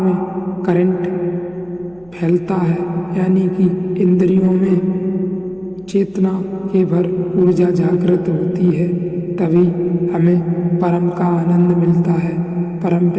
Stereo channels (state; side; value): noise; right; hum, 29 dB below the sound